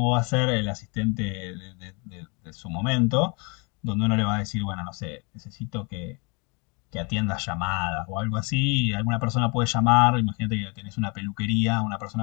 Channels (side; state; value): right; quieter; 32.0 dB